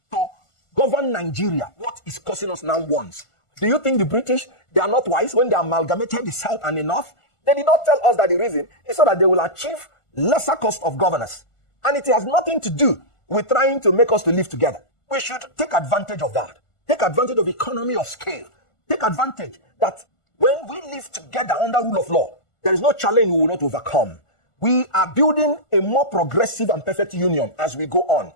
to govern Nigeria what is costing us now once. Do you think the British, they are not wise when they amalgamated the south and the north? They did not tell us that the reason is so that they will achieve lesser cost of governance, and it has nothing to do with trying to make us to live together. We should take advantage of that. Take advantage of economy of scale. Take advantage that when we live together under rule of law, there is no challenge we will not overcome. We are building a more progressive and perfect union as we go on.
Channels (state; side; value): late; right; 1.4 ms